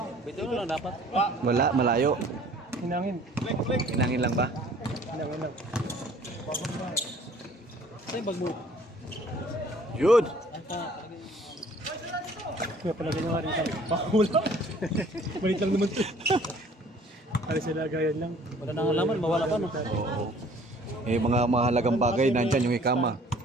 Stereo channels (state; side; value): normal; both; correlation 0.54